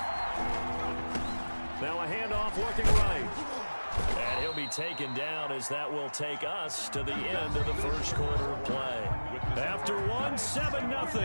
Now a handoff looking right. And he'll be taken down as that will take us to the end of the first quarter of play. After one,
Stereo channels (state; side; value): inverted; both; correlation -1.00